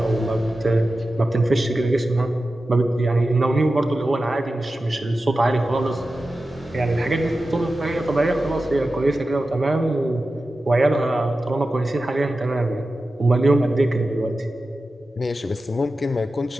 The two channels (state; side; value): normal; both; correlation 0.93